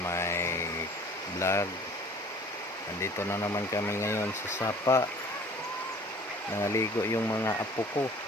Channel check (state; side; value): normal; both; correlation 0.49